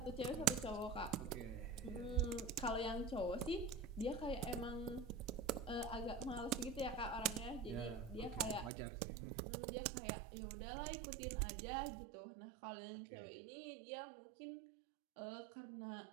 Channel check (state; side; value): drops out; left; at 8.7 s